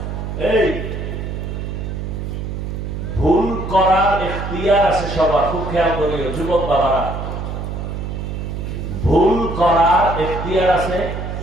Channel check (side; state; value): right; noise; hum, 5 dB below the sound